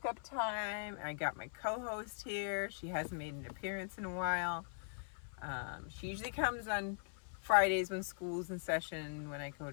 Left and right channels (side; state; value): right; silent; 50 dB below the other